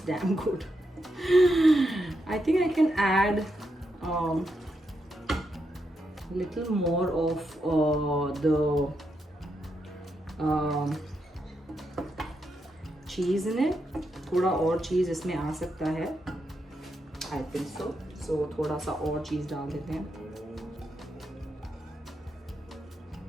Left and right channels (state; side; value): normal; both; correlation 0.83